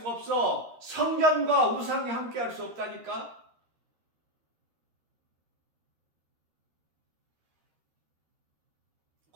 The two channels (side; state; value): left; late; 13 ms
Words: 없어. 성전과 우상이 함께 할 수 없다니까.